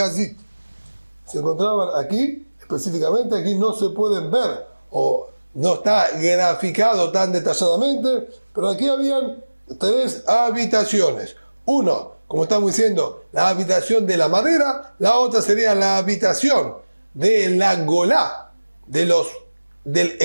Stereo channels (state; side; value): inverted; both; correlation -1.00